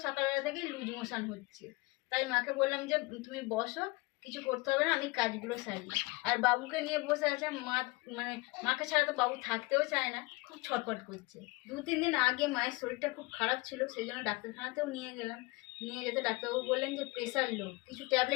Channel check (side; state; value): right; quieter; 24.2 dB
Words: সকালবেলা থেকেই লুজ মোশন হচ্ছে। তাই মাকে বললাম যে তুমি বসো, কিছু করতে হবে না, আমি কাজগুলো সারি। আর বাবুকে নিয়ে বসে আছে। মানে মাকে ছাড়া তো বাবু থাকতেও চায় না, খুব ছটফট করছে। 2-3 দিন আগে মায়ের শরীরটা খুব খারাপ ছিল, সেই জন্য ডাক্তারখানাতেও নিয়ে গেলাম। নিয়ে যেতে ডাক্তারবাবু বললেন যে প্রেশার লো, কিছু